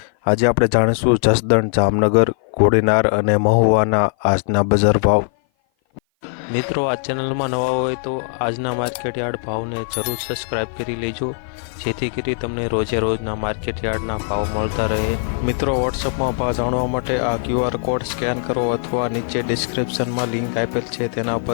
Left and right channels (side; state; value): right; silent; 56 dB below the other